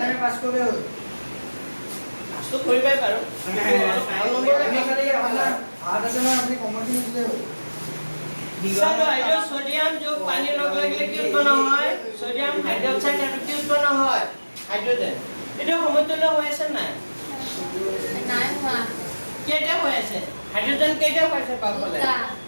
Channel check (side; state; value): both; inverted; correlation -1.00